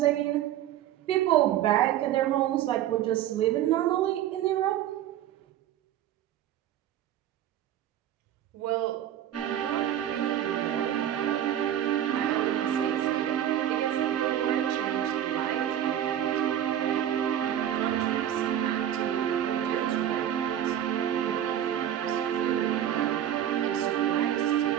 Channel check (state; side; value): quieter; left; 11.0 dB